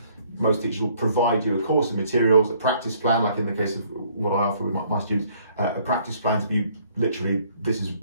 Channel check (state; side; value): inverted; both; correlation -0.62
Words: most teachers will provide you a course of materials, a practice plan, like in the case of what I offer with my students, a practice plan to be literally, this is